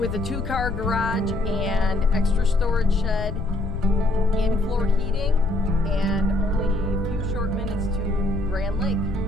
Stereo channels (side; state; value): left; noise; rumble, 5 dB below the sound